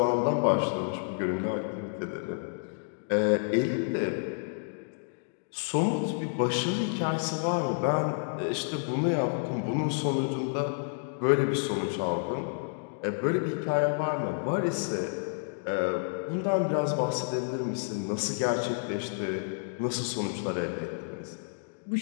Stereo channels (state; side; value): silent; right; digital silence